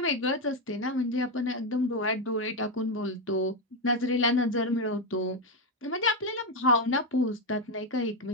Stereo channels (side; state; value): both; normal; correlation 0.07